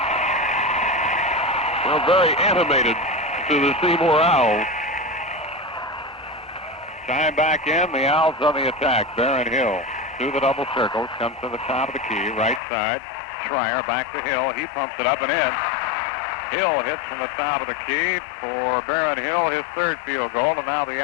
animated to the Seymour Owls. Time back in, the Owls on the attack. Barron Hill through the double circles, comes to the top of the key, right side. Schreier back to Hill. He pumps it up and in. Hill hits from the top of the key for Barron Hill, his third field goal, and now the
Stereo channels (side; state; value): right; drops out; at 12.6 s